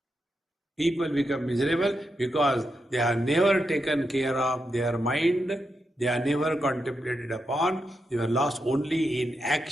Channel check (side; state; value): both; normal; correlation 0.85